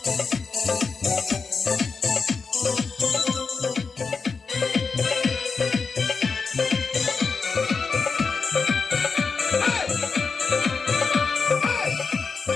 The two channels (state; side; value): quieter; right; 4.9 dB